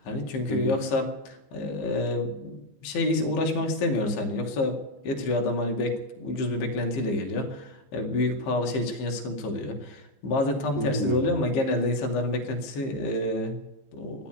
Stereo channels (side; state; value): right; late; 15 ms